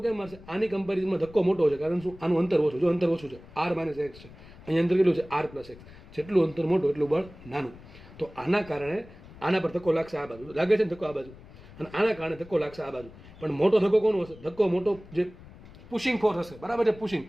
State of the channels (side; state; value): left; noise; rumble, 20 dB below the sound